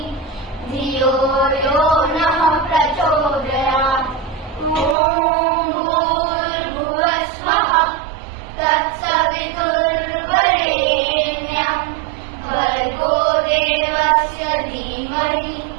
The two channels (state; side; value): drops out; left; at 5.0 s